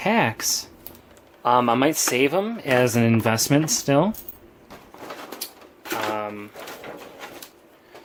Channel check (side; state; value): both; identical; correlation 1.00